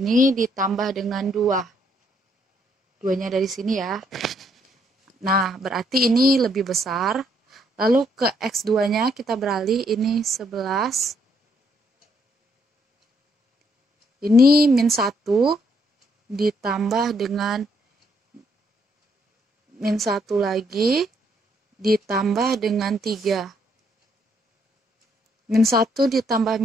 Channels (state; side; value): normal; both; correlation 0.71